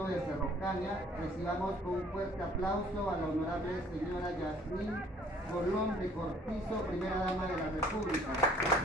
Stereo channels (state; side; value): normal; both; correlation 0.57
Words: de Cerro Caña. Recibamos con un fuerte aplauso a la honorable señora Yasmín Colón de Cortizo, primera dama de la República.